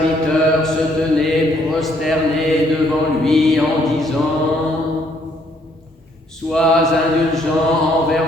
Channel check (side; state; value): both; normal; correlation 0.67